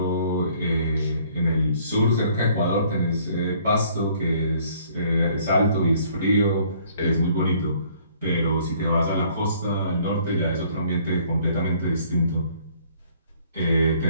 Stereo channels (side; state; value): both; inverted; correlation -0.60